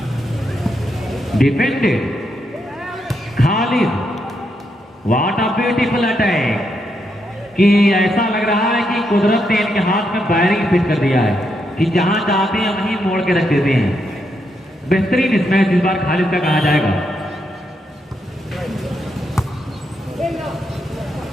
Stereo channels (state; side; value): normal; both; correlation 0.81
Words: Defended Khalid, what a beautiful attack, कि ऐसा लग रहा है कि कुदरत ने इनके हाथ में बैरिंग फिट कर दिया है कि जहां चाहते हैं वहीं मोड़ के रख देते हैं। बेहतरीन इस मैच इस बार खालिद का कहा जाएगा।